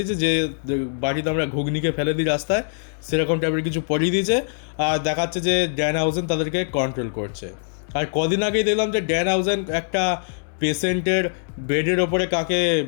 যে বাটিতে আমরা ঘুগনিকে ফেলে দিই রাস্তায়, সেরকম টাইপের কিছু পরিয়ে দিয়েছে। আর দেখাচ্ছে যে ড্যান হাউজেন তাদেরকে কন্ট্রোল করছে। আর কদিন আগেই দেখলাম যে ড্যান হাউজেন একটা পেশেন্টের বেডের ওপরে কাকে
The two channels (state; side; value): silent; right; digital silence